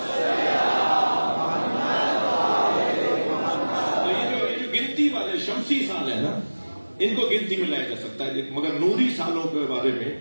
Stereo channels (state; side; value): inverted; both; correlation -1.00